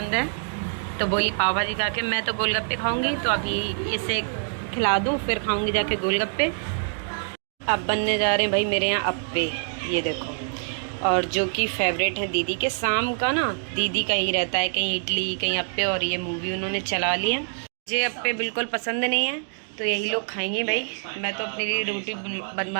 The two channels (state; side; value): silent; left; digital silence